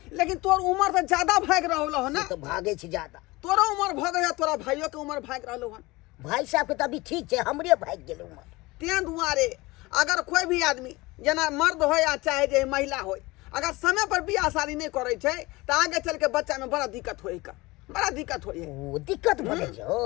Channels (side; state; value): right; quieter; 21.8 dB